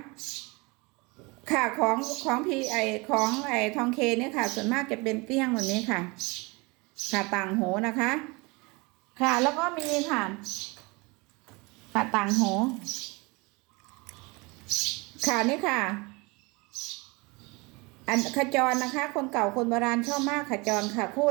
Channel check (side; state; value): left; quieter; 26.6 dB